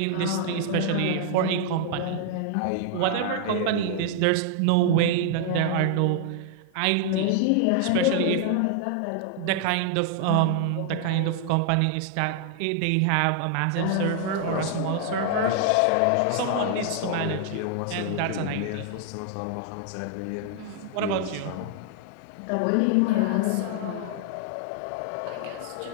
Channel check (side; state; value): both; different; correlation 0.00